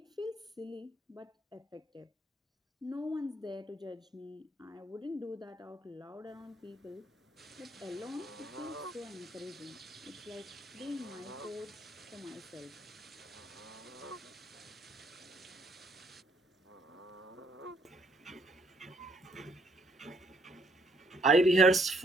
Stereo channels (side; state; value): both; normal; correlation 0.68